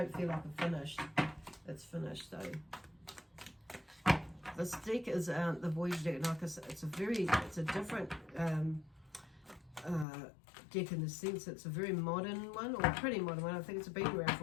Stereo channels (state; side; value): drops out; right; at 10.1 s